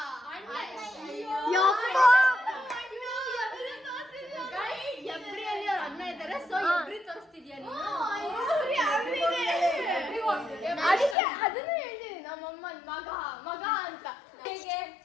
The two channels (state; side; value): drops out; right; at 11.2 s